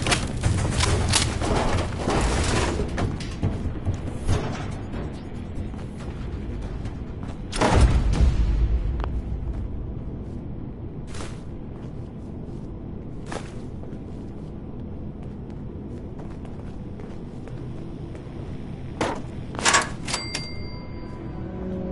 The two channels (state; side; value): identical; both; correlation 1.00